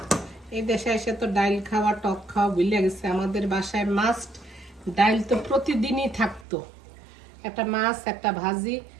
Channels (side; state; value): left; drops out; at 6.5 s